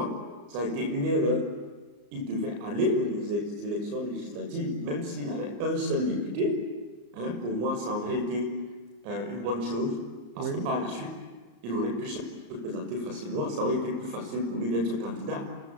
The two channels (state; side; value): late; left; 34 ms